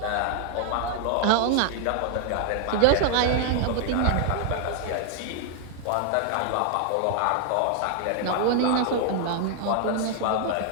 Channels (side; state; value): both; different; correlation 0.00